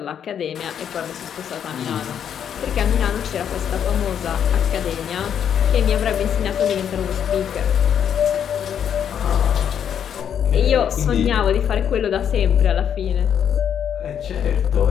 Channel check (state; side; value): quieter; right; 8.7 dB